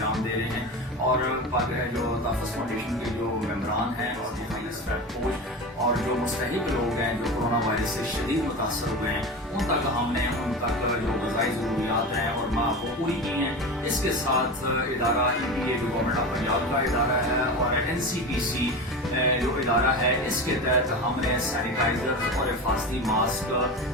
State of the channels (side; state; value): both; normal; correlation 0.26